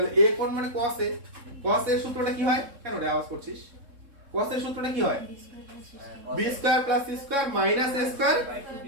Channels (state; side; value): late; left; 3.7 ms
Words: a কোণ মানে cos a। cos a এর সূত্রটা কি হয়? কেন রে আওয়াজ করছিস? cos a এর সূত্রটা কি হয়? b square plus c square minus a square